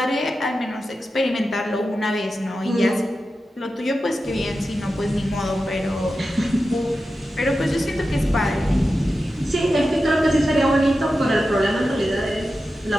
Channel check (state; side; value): normal; both; correlation 0.92